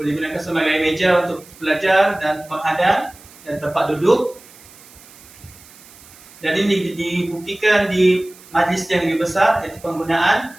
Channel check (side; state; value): right; noise; hiss, 22 dB below the sound